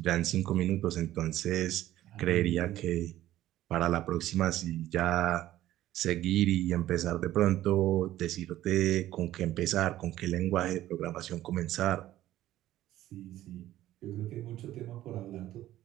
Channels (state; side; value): quieter; left; 14.0 dB